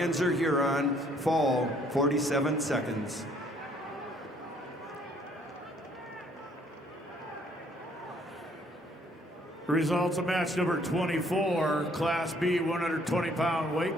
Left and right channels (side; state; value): both; normal; correlation 0.63